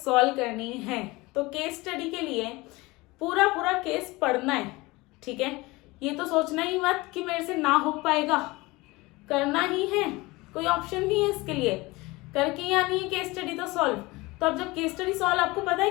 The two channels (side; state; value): right; quieter; 22.2 dB